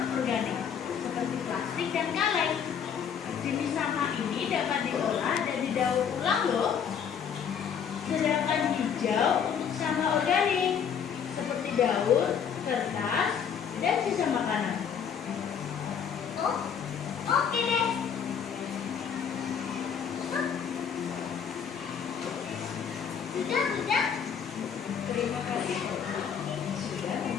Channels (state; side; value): quieter; right; 7.5 dB